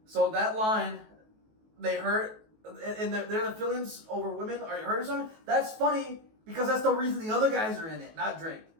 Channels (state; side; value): late; left; 19 ms